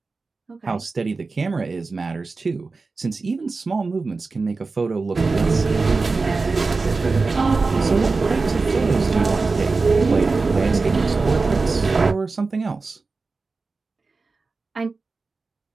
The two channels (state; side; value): quieter; left; 4.0 dB